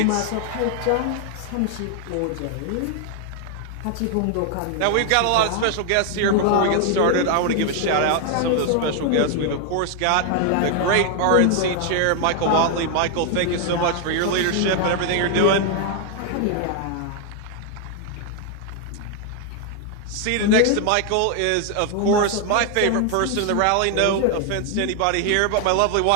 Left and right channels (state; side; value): different; both; correlation 0.00